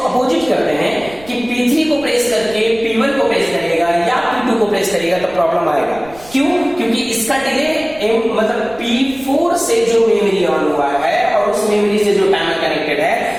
अपोजिट करते हैं कि P3 को प्रेस करके P1 को प्रेस करेगा या P2 को प्रेस करेगा, तो प्रॉब्लम आएगा। क्यों? क्योंकि इसका डिले मतलब P4 से जो मेमोरी ऑन हुआ है और उस मेमोरी से जो टाइमर कनेक्टेड है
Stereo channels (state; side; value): noise; right; rumble, 22 dB below the sound